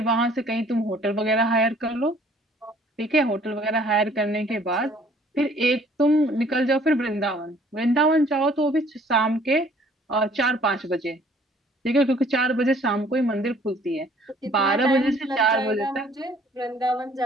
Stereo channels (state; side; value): normal; both; correlation 0.57